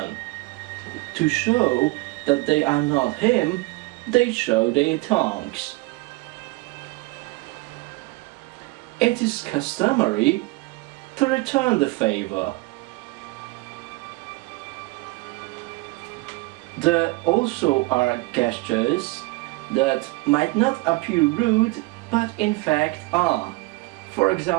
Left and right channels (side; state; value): left; quieter; 22.6 dB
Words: To show that they are not him, they show their tongues. It is customary to return the favor. There also are gestures that might not appear rude, but in fact are. For